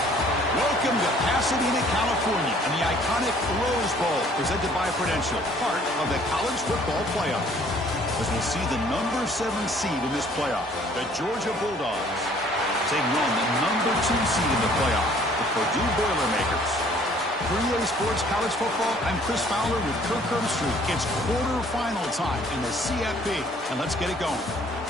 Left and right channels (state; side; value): normal; both; correlation 0.58